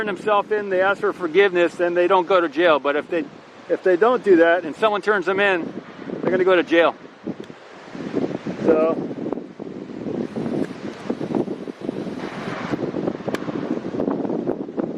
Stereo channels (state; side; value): identical; both; correlation 1.00